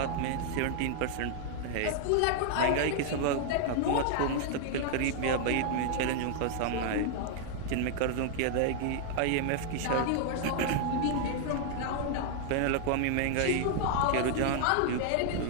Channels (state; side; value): different; both; correlation 0.00